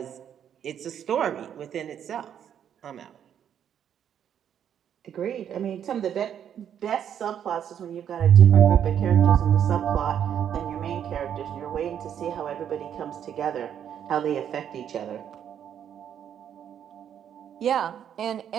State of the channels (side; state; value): left; quieter; 9.2 dB